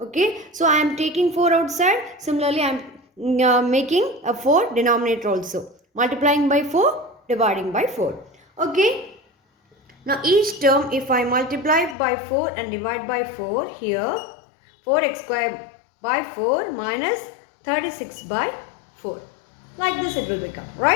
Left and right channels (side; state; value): right; drops out; at 12.0 s